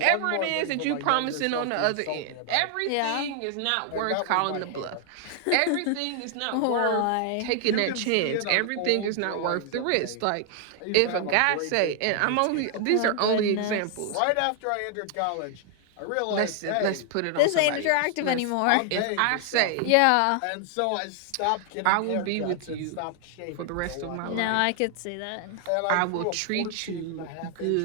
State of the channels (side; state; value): both; different; correlation 0.00